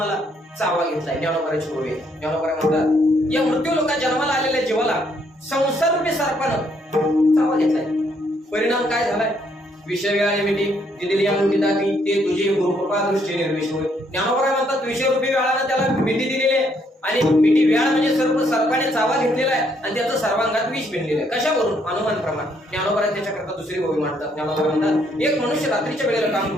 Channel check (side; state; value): both; normal; correlation 0.71